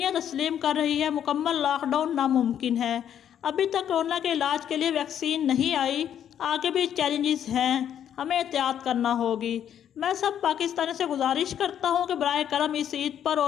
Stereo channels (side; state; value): right; quieter; 9.6 dB